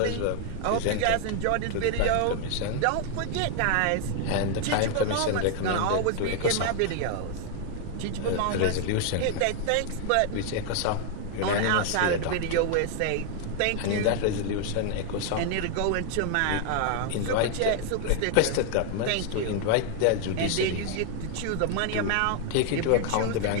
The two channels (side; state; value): both; different; correlation 0.00